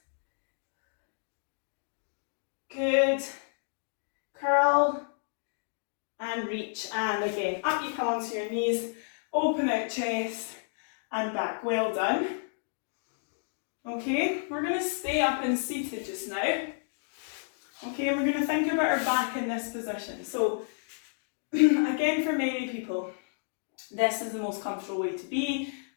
Good. Curl and reach. And again, up you come onto your knees. Open out chest and back. Well done. Okay, we're going to stay up and seated just now. Okay, we're going to think about our back in this position. So, again, for many people, this is the most comfortable way to be.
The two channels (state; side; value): silent; right; digital silence